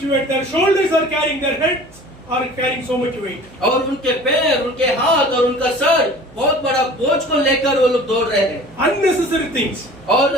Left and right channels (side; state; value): right; noise; hum, 25 dB below the sound